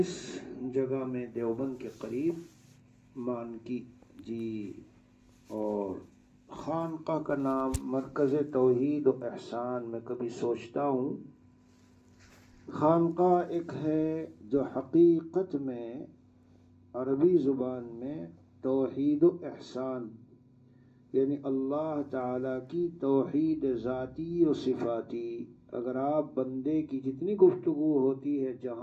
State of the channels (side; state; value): both; identical; correlation 1.00